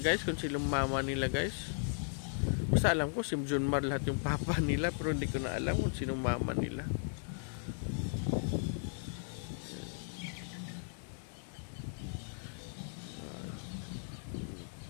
guys, kung silang mama nila guys. Basta alam ko si Junmar lahat yung papa nila, pero hindi ko na alam kung sinong mama nila.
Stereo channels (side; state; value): right; silent; digital silence